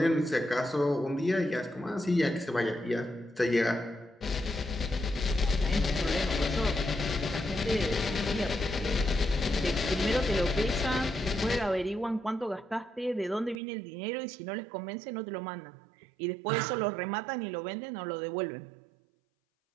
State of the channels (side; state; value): left; drops out; at 13.6 s